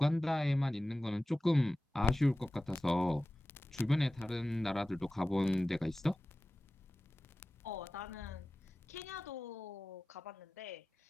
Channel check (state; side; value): normal; both; correlation 0.96